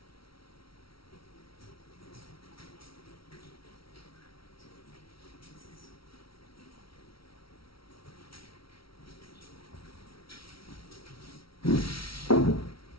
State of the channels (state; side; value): late; right; 0.75 ms